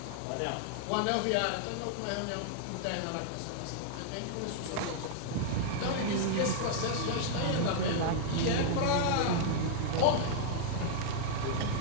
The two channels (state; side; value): different; both; correlation -0.01